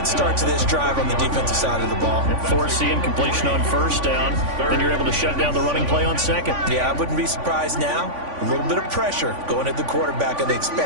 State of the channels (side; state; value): left; late; 3.5 ms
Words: start to this drive on the defensive side of the ball. Force the incompletion on 1st down. Then you're able to shut down the running play on 2nd. Yeah, I wouldn't be surprised now. A little bit of pressure going at the quarterback in the